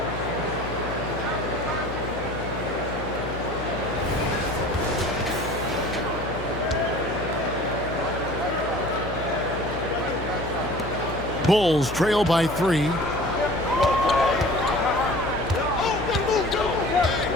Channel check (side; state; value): left; noise; hum, 10 dB below the sound